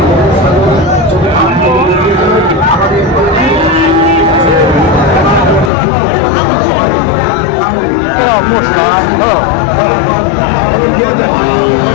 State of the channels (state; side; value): drops out; right; at 5.7 s